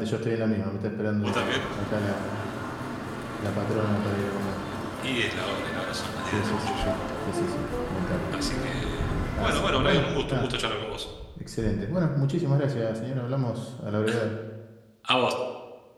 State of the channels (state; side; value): identical; both; correlation 1.00